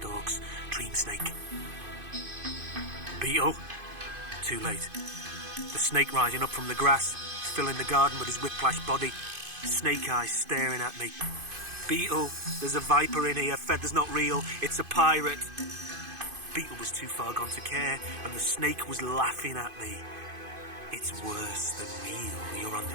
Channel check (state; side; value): late; left; 2.5 ms